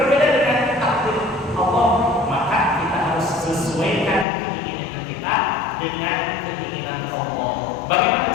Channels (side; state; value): right; drops out; at 4.2 s